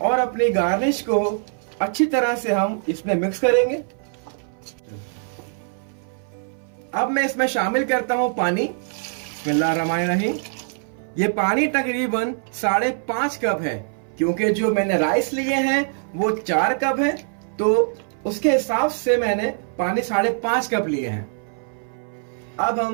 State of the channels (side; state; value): left; silent; 60 dB below the other